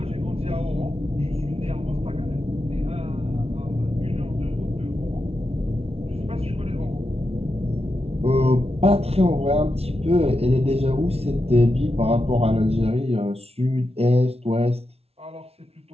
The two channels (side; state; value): left; late; 0.30 ms